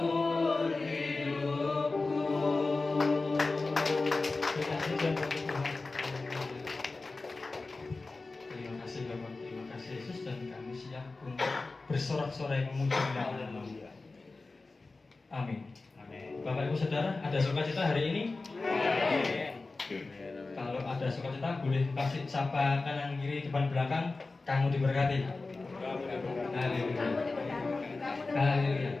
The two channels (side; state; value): right; quieter; 3.6 dB